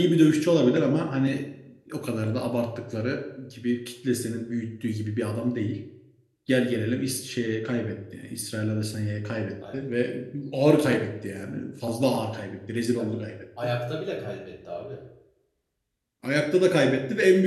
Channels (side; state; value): both; identical; correlation 1.00